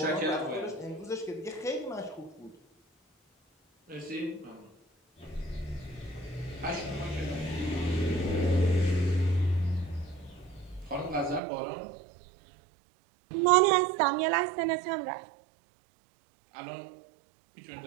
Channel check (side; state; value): left; drops out; at 11.4 s